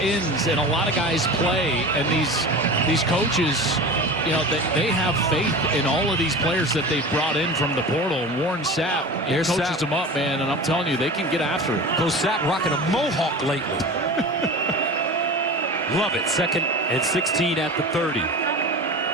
and a lot of guys play, and these coaches, you know, they have faith in all of these players that they've brought in from the portal. And Warren Sapp coaches them up, man, and I'm telling you, they can get after it. Coach Sapp rocking a mohawk lately. Love it. 2nd and 16 at the 30.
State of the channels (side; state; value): both; normal; correlation 0.33